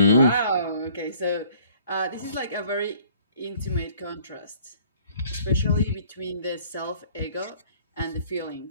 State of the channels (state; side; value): inverted; both; correlation -0.57